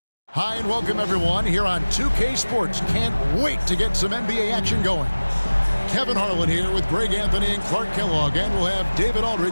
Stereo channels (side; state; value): both; inverted; correlation -1.00